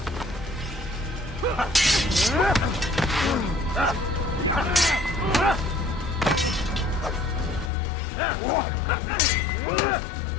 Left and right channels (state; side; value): drops out; right; at 7.7 s